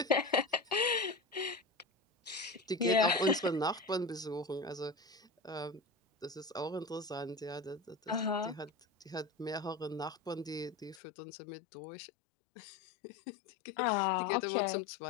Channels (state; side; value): drops out; right; at 11.0 s